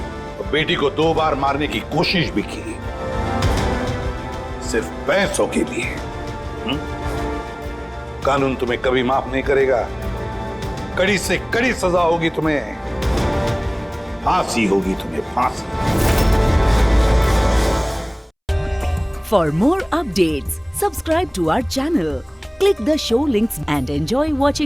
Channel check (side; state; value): both; identical; correlation 1.00